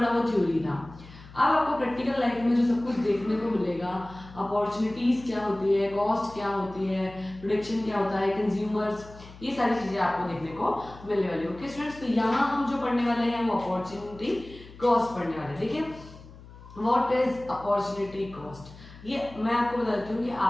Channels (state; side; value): noise; left; hum, 19 dB below the sound